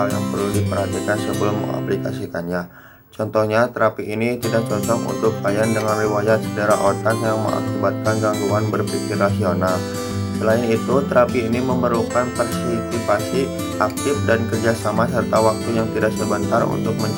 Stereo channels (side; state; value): both; identical; correlation 1.00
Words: yang perlu diperhatikan sebelum mengaplikasikannya. Contohnya, terapi ini tidak cocok untuk klien dengan riwayat cedera otak yang mengakibatkan gangguan berpikir rasional. Selain itu, terapi ini memerlukan partisipasi aktif dan kerjasama serta waktu yang tidak sebentar untuk